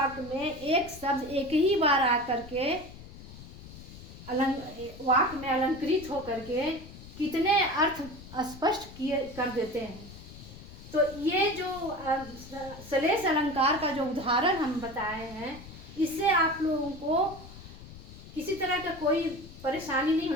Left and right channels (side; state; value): left; noise; rumble, 16 dB below the sound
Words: में एक शब्द एक ही बार आकर के वाक्य में अलंकृत होकर के कितने अर्थ स्पष्ट कर देते हैं। तो ये जो सलेश अलंकार का जो उदाहरण हम बताए हैं, इससे आप लोगों को किसी तरह का कोई परेशानी नहीं